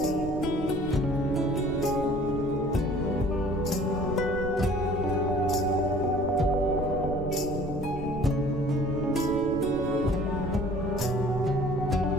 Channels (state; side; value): noise; right; rumble, 9 dB below the sound